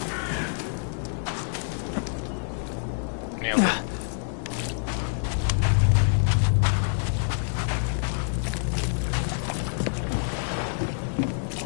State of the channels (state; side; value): silent; right; digital silence